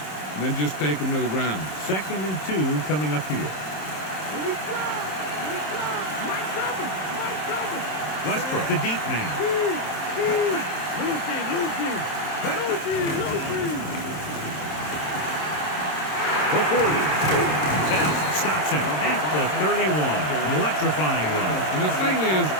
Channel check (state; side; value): late; right; 27 ms